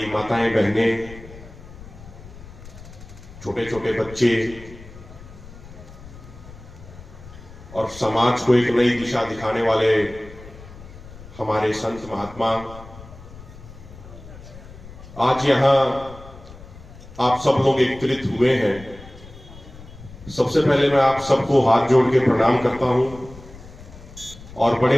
माताएं बहनें, छोटे छोटे बच्चे और समाज को एक नई दिशा दिखाने वाले हमारे संत महात्मा, आज यहां आप सब लोग एकत्रित हुए हैं। सबसे पहले मैं आप सबको हाथ जोड़ के प्रणाम करता हूं और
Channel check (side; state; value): left; noise; rumble, 17 dB below the sound